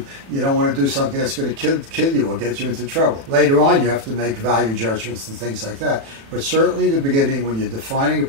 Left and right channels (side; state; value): left; late; 36 ms